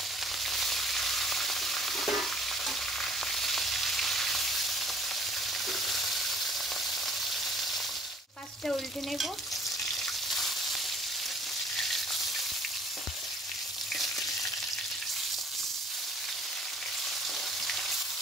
মাছটা উল্টে নেব।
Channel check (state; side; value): normal; both; correlation 0.56